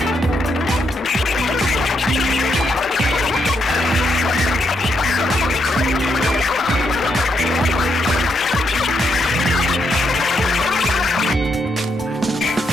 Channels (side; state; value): both; normal; correlation 0.78